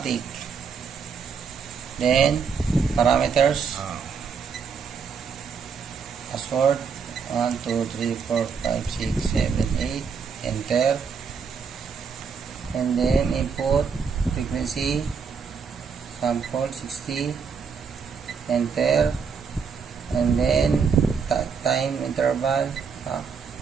Then, parameters. Password. 1, 2, 3, 4, 5, 6, 7, 8. Enter. And then, input. Frequency. Sample 60. Enter. And then, time interval.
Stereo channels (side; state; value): left; quieter; 6.0 dB